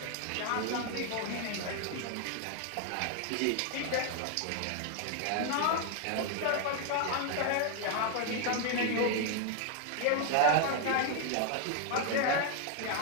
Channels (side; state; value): both; different; correlation 0.00